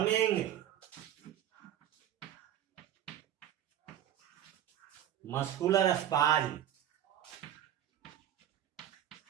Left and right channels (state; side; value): quieter; left; 11.0 dB